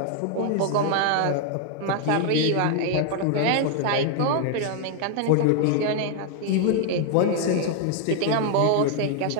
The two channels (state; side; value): different; both; correlation 0.00